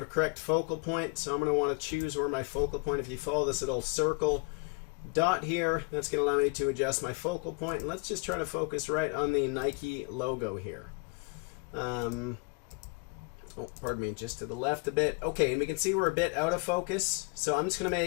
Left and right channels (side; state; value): right; quieter; 32.5 dB